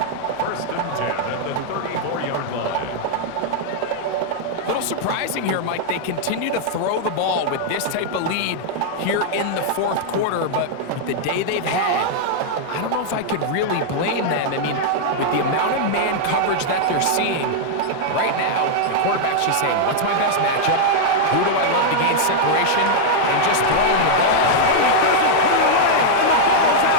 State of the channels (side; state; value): both; different; correlation -0.01